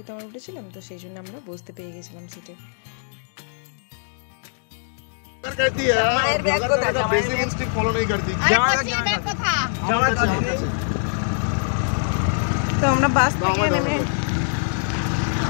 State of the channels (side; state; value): right; silent; digital silence